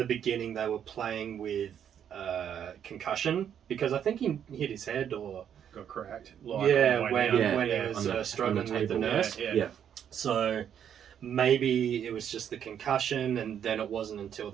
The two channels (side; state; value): left; quieter; 9.0 dB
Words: beginning they were playing with concussion, because I think he hit his head or got cracked. Like, when he was struggling with the nurse. So maybe it was just the concussion, and then it wasn't until